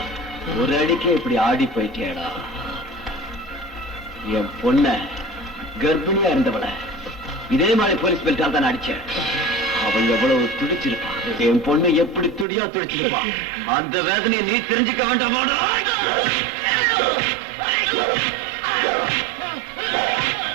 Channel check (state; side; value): drops out; left; at 12.5 s